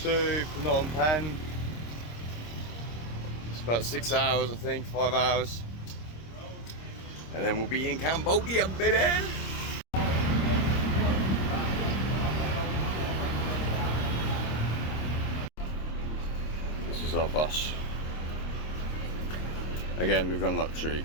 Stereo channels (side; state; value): right; late; 26 ms